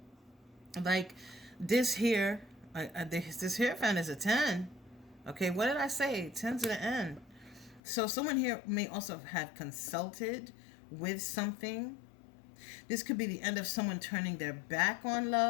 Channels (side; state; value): right; drops out; at 7.8 s